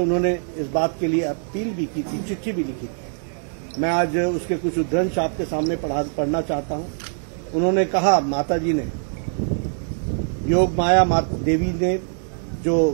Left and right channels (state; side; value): silent; left; 63 dB below the other